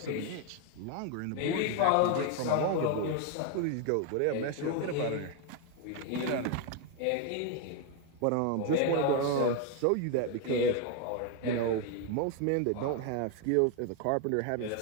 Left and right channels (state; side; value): different; both; correlation 0.01